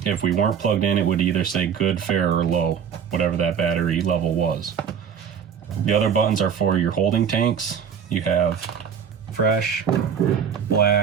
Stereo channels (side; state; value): left; quieter; 7.6 dB